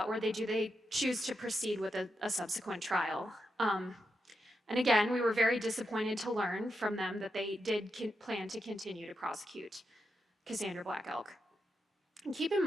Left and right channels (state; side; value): normal; both; correlation 0.85